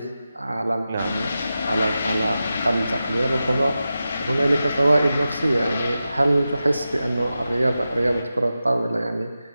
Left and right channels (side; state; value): both; inverted; correlation -0.92